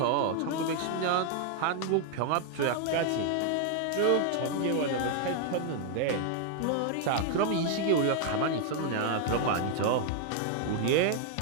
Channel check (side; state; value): both; different; correlation 0.00